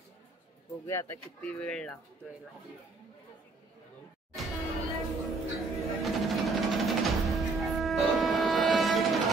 बघूया आता किती वेळ लागतोय.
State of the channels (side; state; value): left; quieter; 3.7 dB